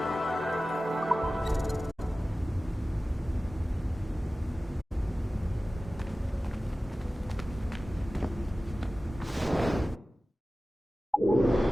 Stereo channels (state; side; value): normal; both; correlation 0.96